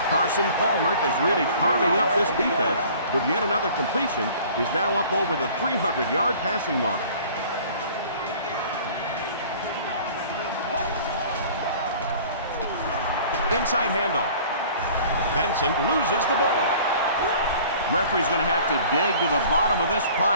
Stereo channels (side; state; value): both; inverted; correlation -0.48